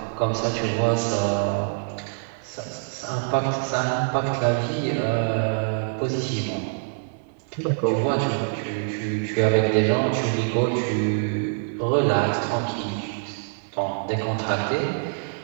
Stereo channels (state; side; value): silent; left; digital silence